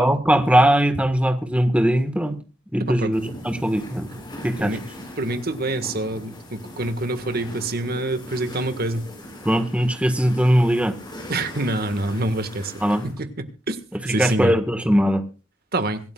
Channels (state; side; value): normal; both; correlation 0.84